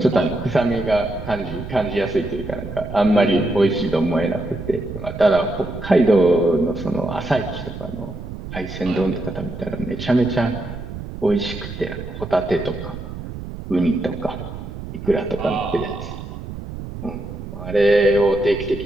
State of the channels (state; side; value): noise; right; rumble, 10 dB below the sound